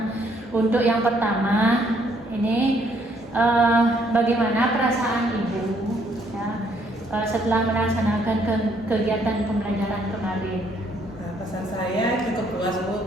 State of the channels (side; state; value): both; normal; correlation 0.68